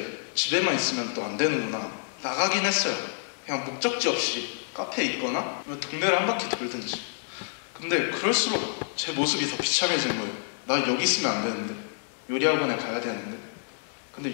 집에만 있으면 또 안 되는구나 나가긴 했어요. 그냥 목적지 없이 카페에 있거나 동네를 한 바퀴 돌든지. 근데 그럴수록 제 모습이 더 비참해진 거예요. 나 여기 있으면 안 되는데 요리학원에 가야 되는데 근데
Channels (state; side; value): silent; right; 59 dB below the other